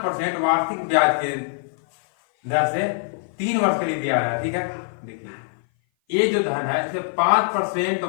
वार्षिक ब्याज के दर से 3 वर्ष के लिए दिया है। ठीक है, देखिए ये जो धन है इसे 5%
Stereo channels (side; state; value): right; silent; 57 dB below the other